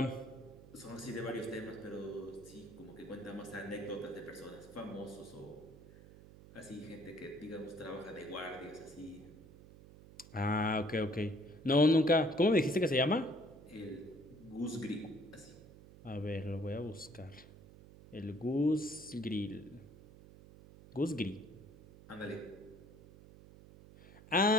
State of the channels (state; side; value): noise; right; hum, 19 dB below the sound